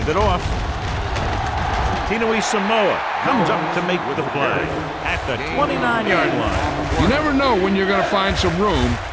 it off. Tinui Samoa comes up to make the play at the 29-yard line. You never know when you're going to find some room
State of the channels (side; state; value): both; identical; correlation 1.00